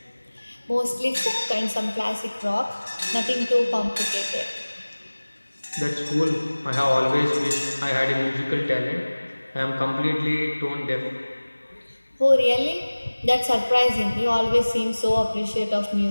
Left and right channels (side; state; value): both; inverted; correlation -1.00